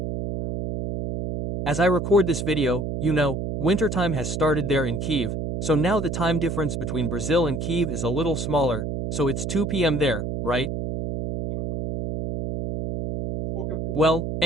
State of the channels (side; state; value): right; noise; hum, 3 dB below the sound